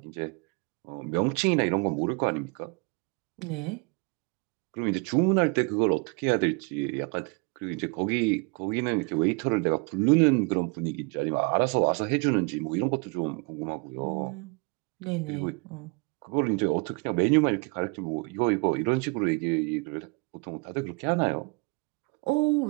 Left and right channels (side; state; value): left; quieter; 30.6 dB